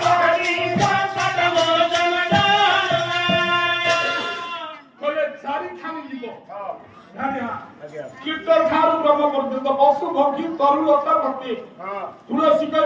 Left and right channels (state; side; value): identical; both; correlation 1.00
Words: କୀର୍ତ୍ତନ ଠାରୁ ବ୍ରହ୍ମ ପର୍ଯ୍ୟନ୍ତ ପଶୁ ପକ୍ଷୀ ତରୁଲତା ପ୍ରତି ତୁଳସୀ